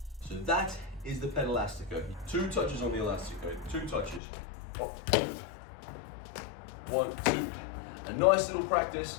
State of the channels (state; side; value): drops out; right; at 4.2 s